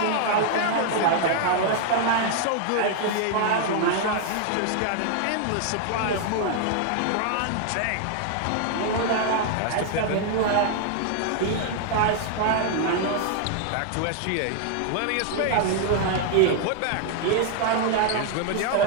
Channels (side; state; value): both; different; correlation 0.00